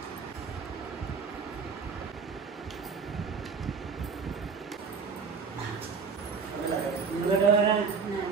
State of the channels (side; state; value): left; quieter; 5.4 dB